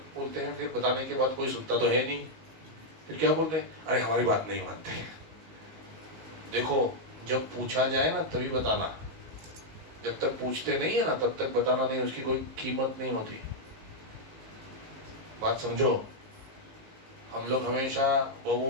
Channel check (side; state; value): left; late; 19 ms